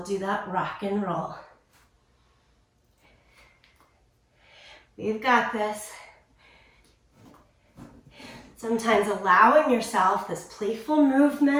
do that rock and roll. We've got this. Sometimes allowing yourself this playful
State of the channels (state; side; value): identical; both; correlation 1.00